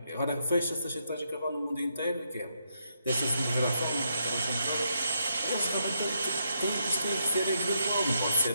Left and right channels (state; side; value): inverted; both; correlation -0.76